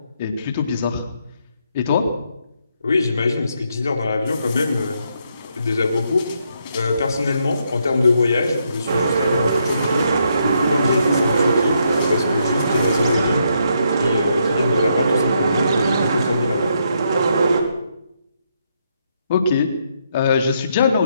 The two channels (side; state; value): both; inverted; correlation -0.76